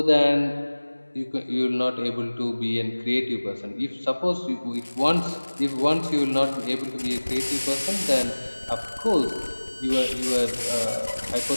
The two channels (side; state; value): both; inverted; correlation -1.00